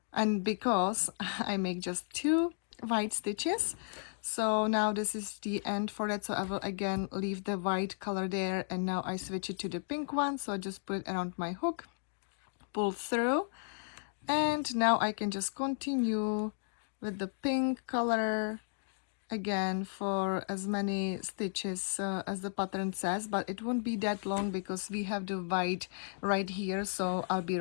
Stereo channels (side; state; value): right; silent; digital silence